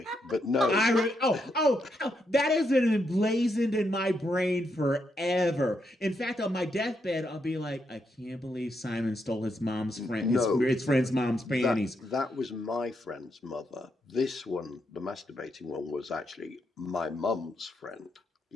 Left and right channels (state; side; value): normal; both; correlation 0.80